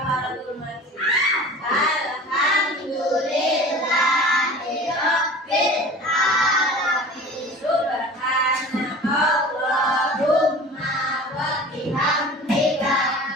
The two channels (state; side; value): normal; both; correlation 0.39